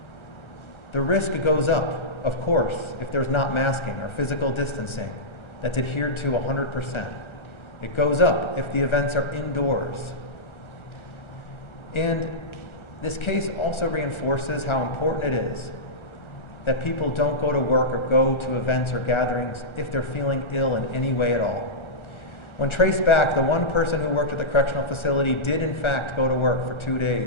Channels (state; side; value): late; right; 1.3 ms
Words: The risk goes up, of course, if there's not masking or physical distancing that's adhered to 100%. It goes up if the events are indoors. And this case also reinforces how important it is that people don't go to work or go to events or gatherings if they're feeling ill in any way at all. When traced back, the one person who worked at the correctional facility did in fact go to work for 2